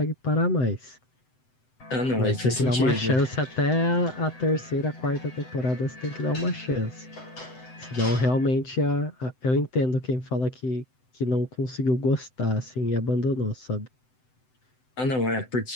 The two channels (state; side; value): late; right; 7.9 ms